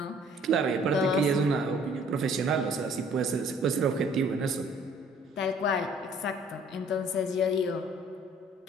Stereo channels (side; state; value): both; normal; correlation 0.57